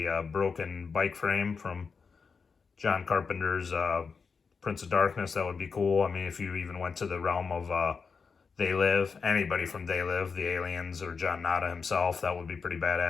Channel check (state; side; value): quieter; right; 5.3 dB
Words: broken bike frame from John Carpenter's Prince of Darkness, that would be cool. I mean, if you even went to the realm of They Live, anybody from They Live, the Aliens, or John Nada himself, that would be pretty